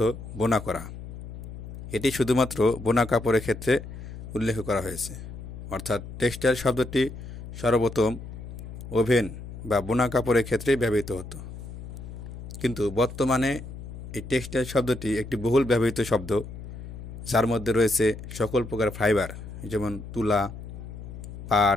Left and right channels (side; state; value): left; noise; hum, 11 dB below the sound